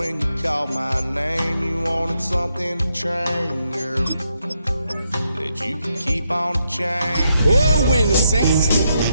you called my name, you wanted something to train, girl, that you could keep on the chain. Oh, when the saints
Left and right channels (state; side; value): inverted; both; correlation -0.80